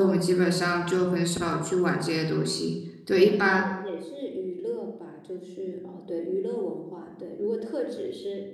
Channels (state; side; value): identical; both; correlation 1.00